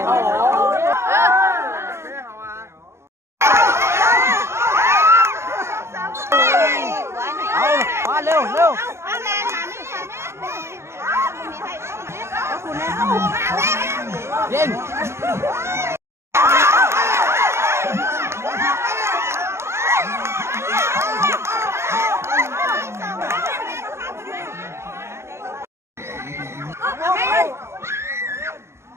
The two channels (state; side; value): late; left; 0.13 ms